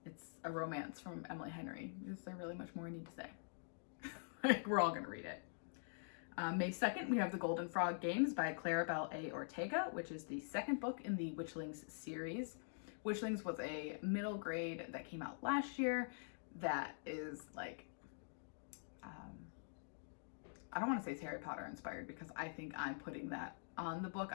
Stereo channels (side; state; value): right; silent; digital silence